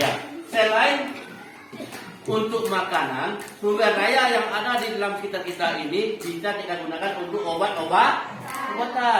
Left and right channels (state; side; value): identical; both; correlation 1.00